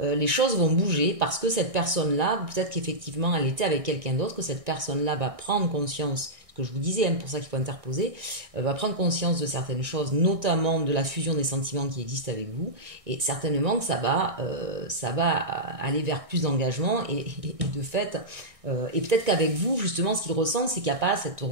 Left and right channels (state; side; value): late; left; 1.6 ms